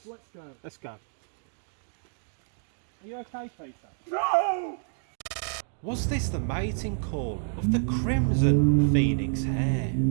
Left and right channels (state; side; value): silent; left; digital silence